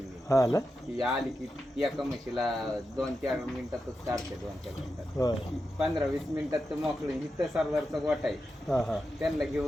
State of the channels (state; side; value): normal; both; correlation 0.89